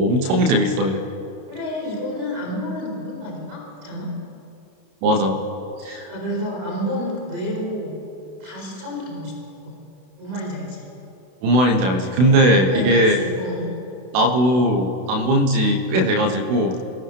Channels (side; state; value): left; late; 32 ms